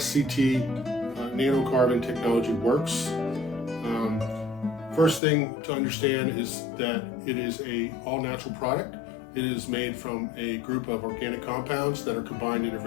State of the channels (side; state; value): right; drops out; at 5.2 s